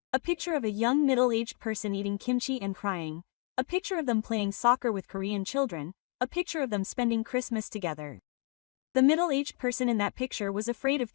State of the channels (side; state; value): right; quieter; 38.4 dB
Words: A picture of a young middle-aged person eating kimchi and crying. A picture of them playing soccer with Korean children. A picture of them spending Christmas together. The middle-aged person in that picture was afraid of